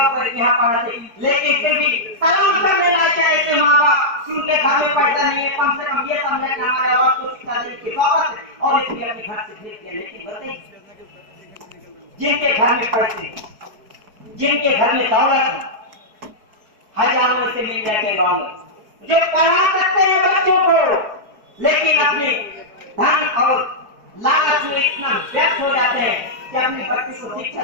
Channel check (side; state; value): left; late; 4.7 ms